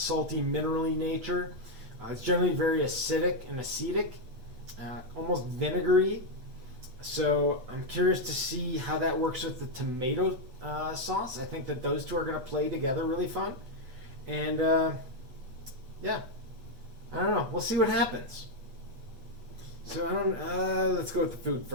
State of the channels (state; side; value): late; left; 8.0 ms